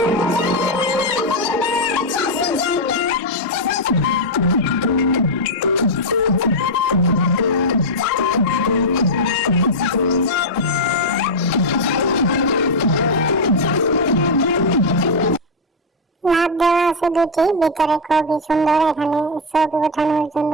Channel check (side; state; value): both; normal; correlation 0.00